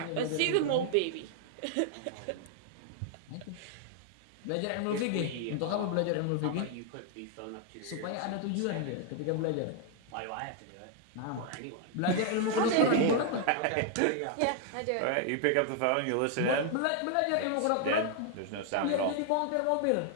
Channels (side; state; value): both; different; correlation 0.00